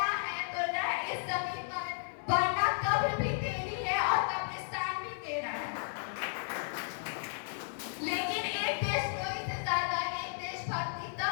है तो रह इस जमीन पर, वरना कब्र भी तेरी है और कब्रिस्तान भी तेरा है। लेकिन एक देशद्रोही से ज्यादा एक देशभक्ति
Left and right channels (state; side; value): silent; right; digital silence